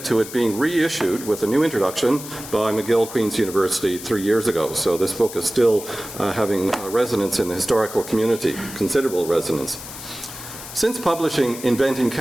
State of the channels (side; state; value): left; noise; hiss, 12 dB below the sound